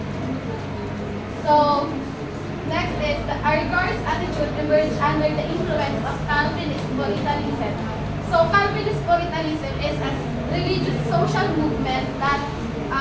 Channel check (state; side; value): identical; both; correlation 1.00